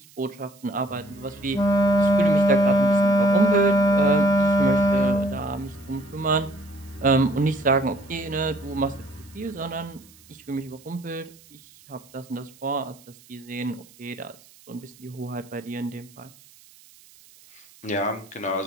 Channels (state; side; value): noise; right; hiss, 26 dB below the sound